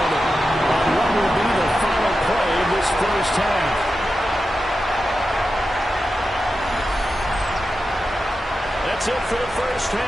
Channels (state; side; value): normal; both; correlation 0.91